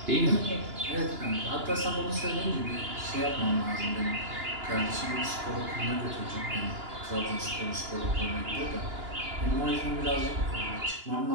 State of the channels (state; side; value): late; left; 2.9 ms